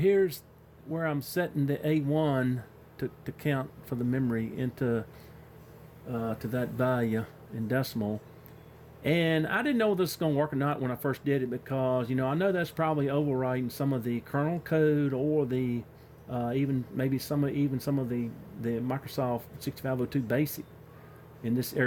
where I'm setting the A1 to count for the memory into to that value in decimal. And I didn't know whether this was going to work or not when I first did it, because I know that's probably overwriting some of the kernel code, or the even some of the Microsoft 6502 BASIC in this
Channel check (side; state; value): both; identical; correlation 1.00